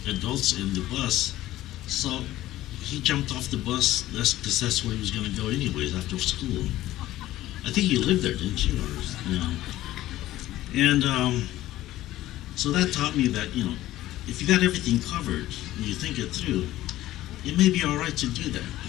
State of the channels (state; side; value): quieter; right; 15.1 dB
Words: adults in the bus. So he jumped off the bus because that's where he was going to go anyways after school. I think you lived there, didn't you? And so that taught me that, if you got everything covered and you think it through, it may be all right to do that.